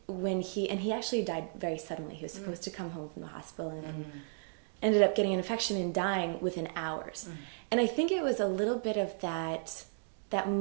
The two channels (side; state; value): left; silent; digital silence